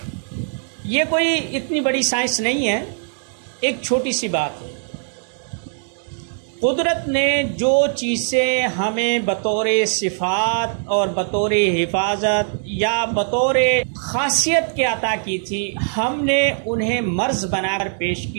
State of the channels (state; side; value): silent; left; digital silence